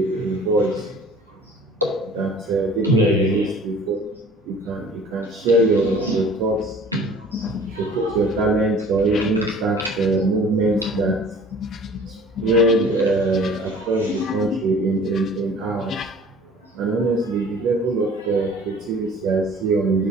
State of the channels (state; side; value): normal; both; correlation 0.49